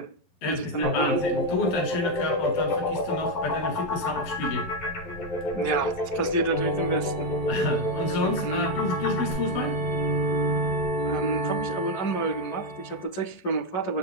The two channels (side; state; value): right; late; 11 ms